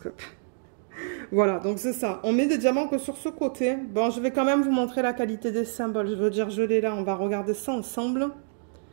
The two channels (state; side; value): silent; left; digital silence